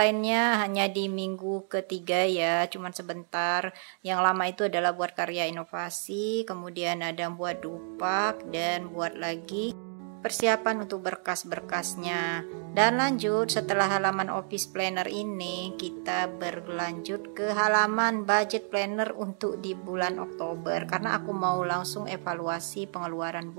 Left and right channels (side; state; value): left; silent; 58 dB below the other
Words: hanya di minggu ketiga ya, cuman sebentar. Yang lama itu adalah buat karya inovasi, kemudian ada buat dupak, dan buat lagi persiapan untuk berkas-berkasnya. Dan lanjut, setelah halaman office planner ini, kita berlanjut ke halaman budget planner untuk di bulan Oktober, karena aku mau langsung evaluasi pengeluaran